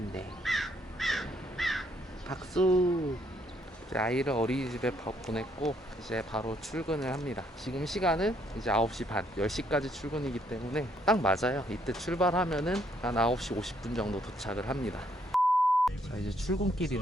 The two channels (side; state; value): both; normal; correlation 0.69